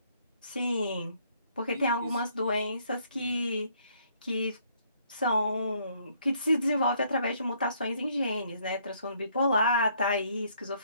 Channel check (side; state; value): both; inverted; correlation -0.67